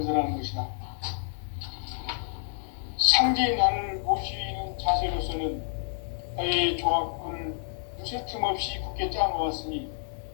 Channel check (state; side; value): silent; right; digital silence